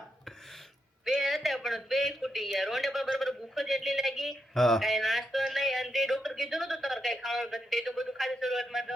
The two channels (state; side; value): normal; both; correlation 0.82